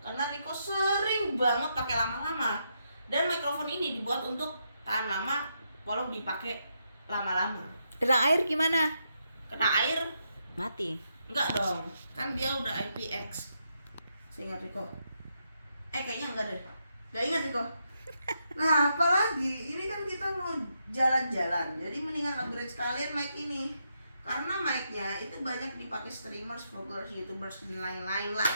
Karena Rico sering banget pakai lama-lama. Dan mikrofon ini dibuat untuk tahan lama walau dipakai lama-lama. Kena air gimana? Kena air Mati. enggak dong, kan dia udah IPX. Seingat Rico. Kayaknya enggak deh. Enggak ingat Rico. Nah, apalagi ini kan kita mau jalan-jalan. Jadi mendingan upgrade sekalian mic ini. Karena mic-nya itu banyak dipakai streamers, vloggers, youtubers, dan lain-lain lah.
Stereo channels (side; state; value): both; inverted; correlation -0.81